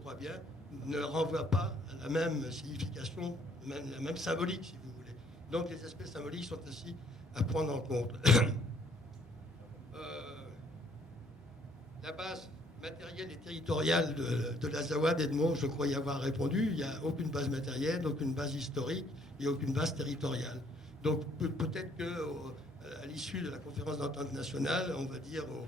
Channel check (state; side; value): normal; both; correlation 0.64